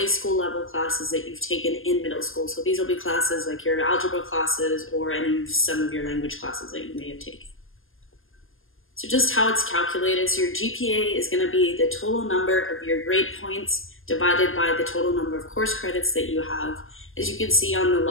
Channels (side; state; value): right; late; 0.59 ms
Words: school level classes that you've taken in middle school. So these will be classes like your algebra classes or some of your language classes that you may have taken. So just how it's calculated, so your GPA is going to be the total number of your grade points divided by the total number of course credits that you have. As you can see on